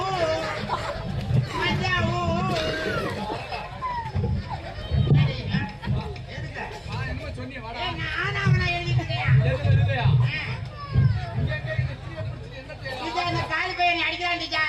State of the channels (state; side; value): identical; both; correlation 1.00